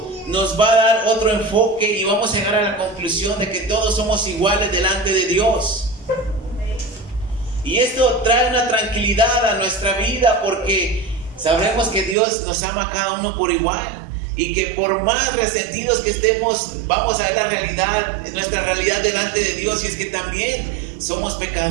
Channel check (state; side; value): drops out; left; at 12.2 s